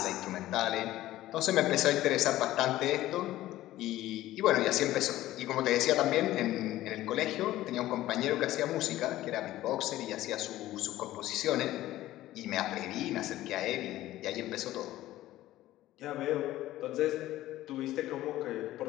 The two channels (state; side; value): quieter; right; 15.2 dB